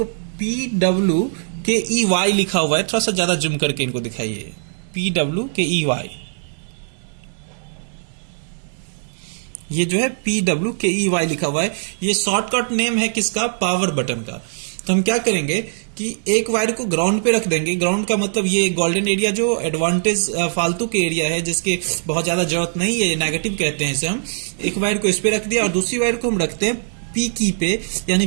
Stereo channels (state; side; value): silent; left; digital silence